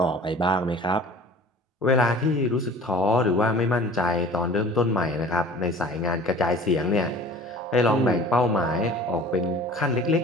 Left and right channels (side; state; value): both; normal; correlation 0.44